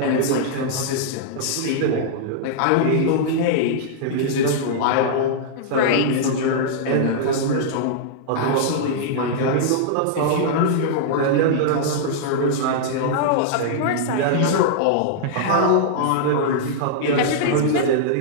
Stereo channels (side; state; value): both; different; correlation -0.02